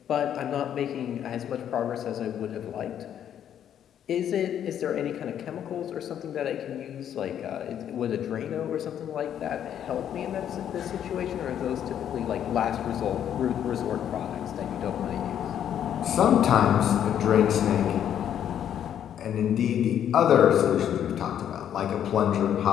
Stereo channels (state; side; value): quieter; right; 9.8 dB